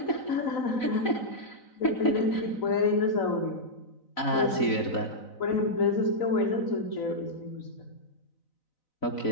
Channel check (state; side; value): late; right; 4.0 ms